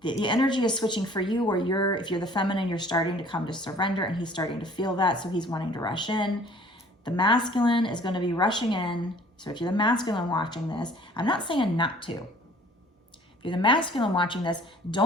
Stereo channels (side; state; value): both; normal; correlation 0.53